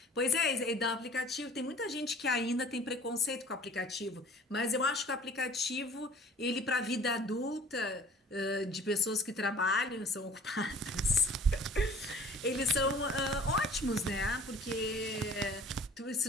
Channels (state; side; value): normal; both; correlation 0.50